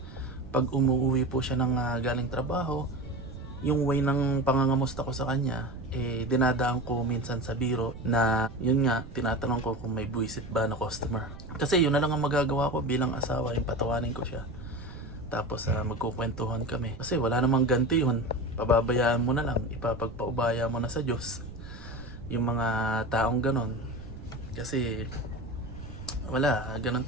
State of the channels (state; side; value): noise; right; rumble, 14 dB below the sound